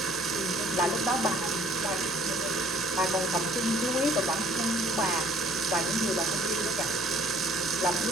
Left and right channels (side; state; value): both; normal; correlation 0.57